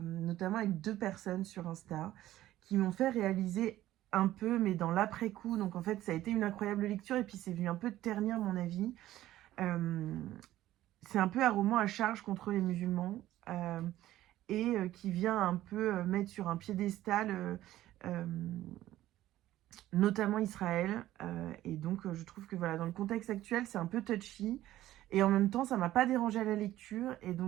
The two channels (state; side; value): quieter; left; 14.4 dB